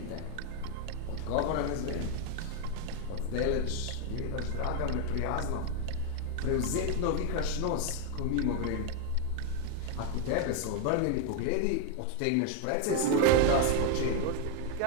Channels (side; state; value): both; different; correlation 0.01